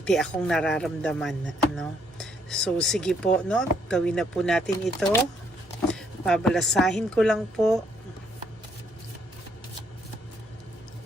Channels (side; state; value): both; normal; correlation 0.70